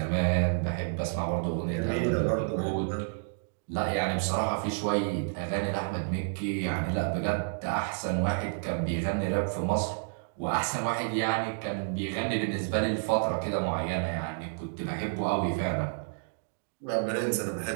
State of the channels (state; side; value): silent; left; digital silence